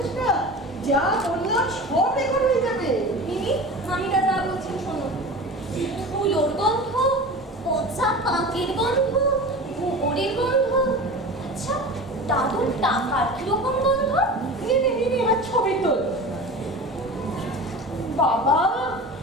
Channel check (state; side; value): normal; both; correlation 0.34